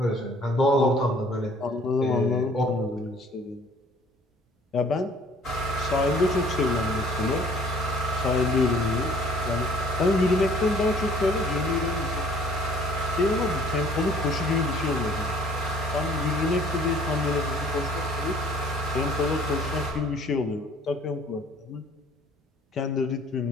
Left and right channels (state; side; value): normal; both; correlation 0.55